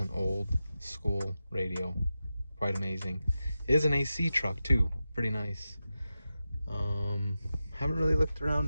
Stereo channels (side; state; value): both; inverted; correlation -0.92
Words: old school radio. Quite amazing. It is an AC truck too. Pretty nice. Haven't really looked